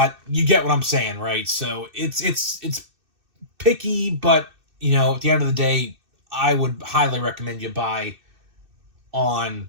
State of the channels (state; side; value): late; left; 2.6 ms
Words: you get what I'm saying, right? So it's picky, but at the end of the day, I would highly recommend you buy on